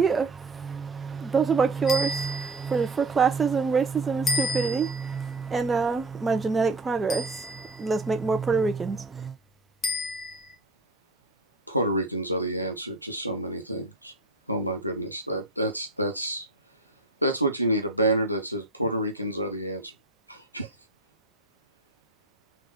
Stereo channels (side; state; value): left; quieter; 3.1 dB